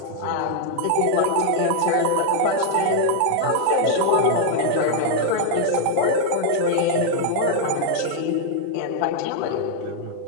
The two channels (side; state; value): both; different; correlation 0.00